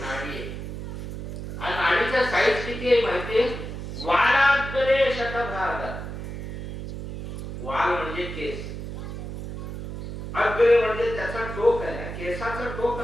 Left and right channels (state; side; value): noise; right; hum, 7 dB below the sound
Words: आहे. आणि नाडीचा साईज किती आहे माहितीये? वालाग्रे शतभाग. वाल म्हणजे केस, अग्रे म्हणजे त्याचा टोक आहे, केसाचा टोक